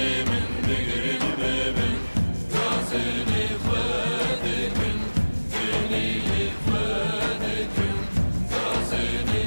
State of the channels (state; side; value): inverted; both; correlation -1.00